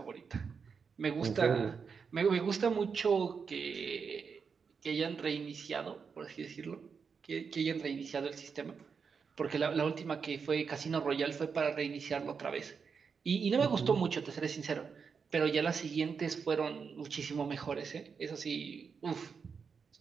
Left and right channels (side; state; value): left; quieter; 5.8 dB